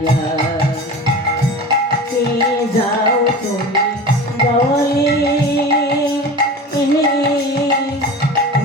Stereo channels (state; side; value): normal; both; correlation 0.33